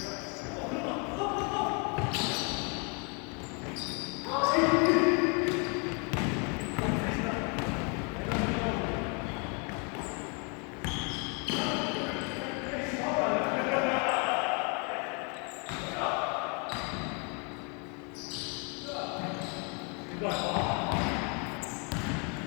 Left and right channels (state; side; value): quieter; right; 34.8 dB